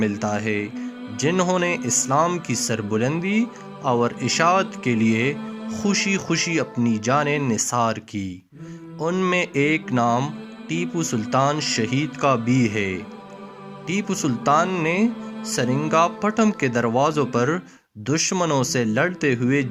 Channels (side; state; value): both; identical; correlation 1.00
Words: ملتا ہے جنہوں نے اسلام کی سربلندی اور اشاعت کے لیے خوشی خوشی اپنی جانیں نثار کی۔ ان میں ایک نام ٹیپو سلطان شہید کا بھی ہے۔ ٹیپو سلطان نے سرنگا پٹم کے دروازوں پر دشمنوں سے لڑتے ہوئے